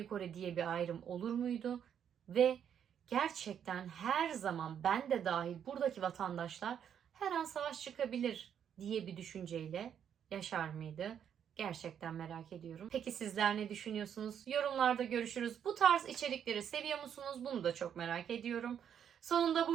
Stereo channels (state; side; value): quieter; left; 8.7 dB